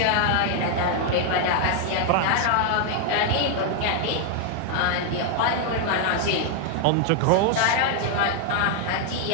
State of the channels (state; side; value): different; both; correlation 0.00